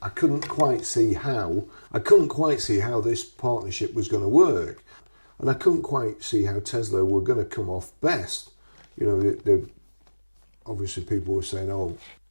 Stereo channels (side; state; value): both; inverted; correlation -1.00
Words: I couldn't quite see how this partnership was going to work. And I couldn't quite see how Tesla were going to come off best. Obviously people were saying, oh,